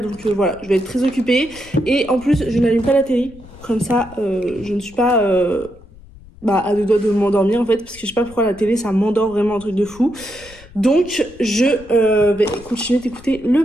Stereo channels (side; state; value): left; noise; rumble, 22 dB below the sound